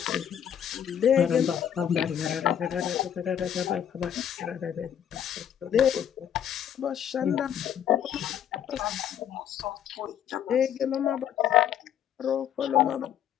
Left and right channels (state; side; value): quieter; right; 9.5 dB